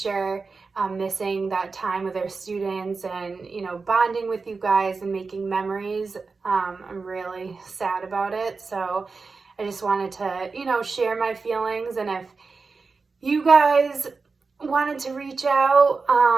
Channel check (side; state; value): left; quieter; 4.4 dB